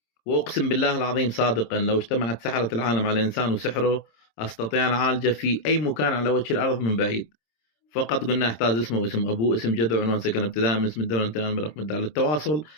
وأقسم بالله العظيم صادقا لو اجتمعت سحرة العالم على إنسان وسحره أستطيع أن أعالجه في أي مكان على وجه الأرض من بعيد، فقط قلنا احتاج اسمه واسم ابوه اسم جده وعنوان سكن ابتداء من اسم الدوله انتهاء برقم الدار. للتواصل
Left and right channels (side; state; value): right; late; 26 ms